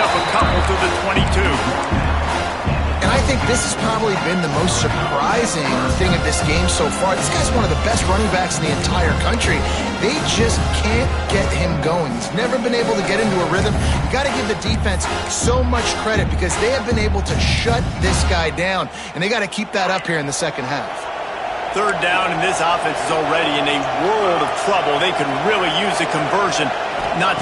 a couple to the 22. And I think this has probably been the most surprising thing of this game so far. This guy's one of the best running backs in the entire country. They just can't get him going. He's never been able to get into a rhythm. You got to give the defense so much credit because they have been able to shut this guy down, and they got to keep that up here in the second half. Third down, and this offense is already in a world of trouble. They could really use a conversion, not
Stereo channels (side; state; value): both; identical; correlation 1.00